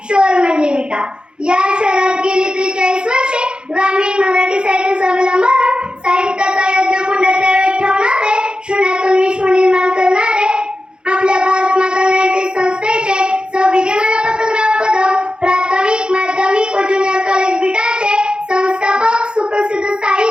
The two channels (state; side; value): late; left; 0.050 ms